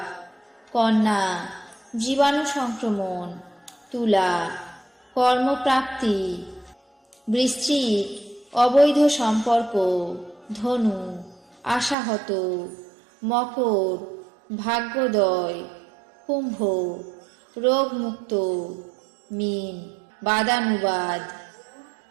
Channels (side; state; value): left; drops out; at 12.0 s